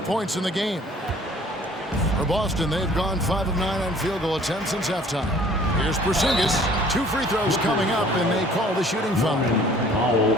points in the game. For Boston, they've gone 5 of 9 on field goal attempts since halftime. Here's Porzingis. 2 free throws coming up, and they call the shooting foul.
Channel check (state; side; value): normal; both; correlation 0.53